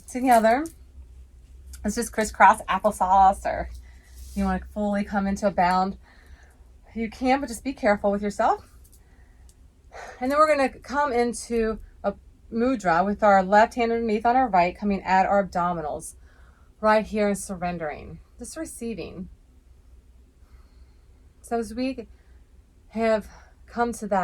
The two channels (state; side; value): identical; both; correlation 1.00